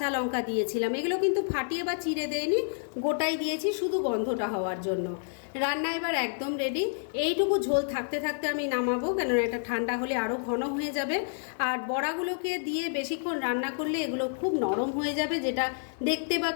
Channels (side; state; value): right; silent; 58 dB below the other